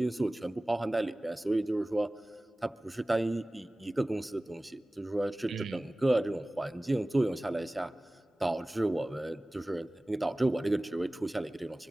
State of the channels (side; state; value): both; normal; correlation 0.98